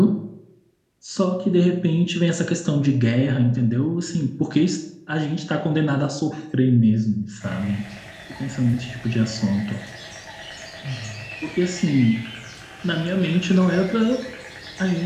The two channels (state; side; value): identical; both; correlation 1.00